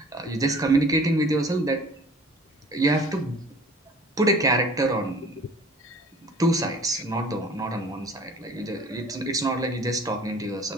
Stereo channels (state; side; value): normal; both; correlation 0.49